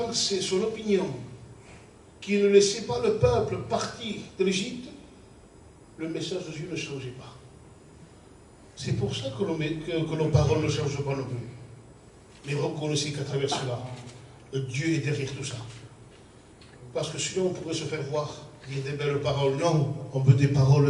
son opinion, qu'il ne laissait pas le peuple partir de l'Égypte, le message de Dieu ne changeait pas. C'est pour ça que nos paroles ne changent pas non plus. Mais reconnaissez qu'à travers cela, Dieu est derrière tout ça. Parce que sinon on pourrait se faire voir, dire des belles paroles. Non, on veut des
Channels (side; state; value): both; identical; correlation 1.00